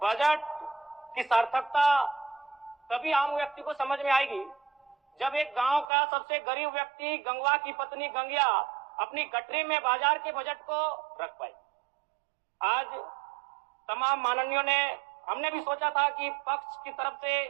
बजट की सार्थकता तभी आम व्यक्ति को समझ में आएगी जब एक गांव का सबसे गरीब व्यक्ति, गंगवा की पत्नी गंगिया, अपनी गठरी में बाजार के बजट को रख पाए। आज तमाम माननीयों ने, हमने भी सोचा था कि पक्ष की तरफ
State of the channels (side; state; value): left; drops out; at 5.9 s